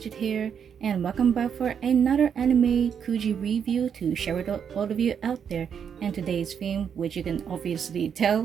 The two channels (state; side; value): quieter; left; 7.6 dB